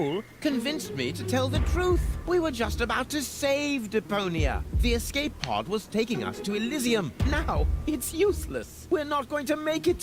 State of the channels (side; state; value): both; identical; correlation 1.00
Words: convinced me to tell the truth. We were just about to save Deponia. The escape pod was taking us to Elysium. Now, it's useless. We're not going to make it